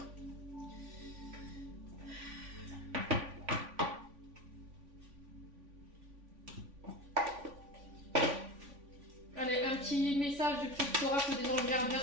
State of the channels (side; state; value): left; late; 3.5 ms